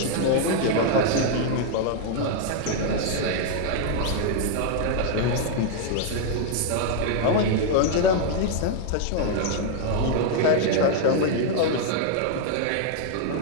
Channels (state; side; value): different; both; correlation 0.00